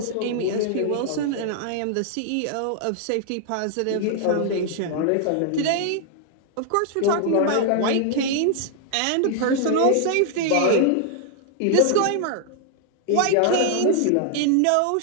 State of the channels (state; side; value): different; both; correlation 0.00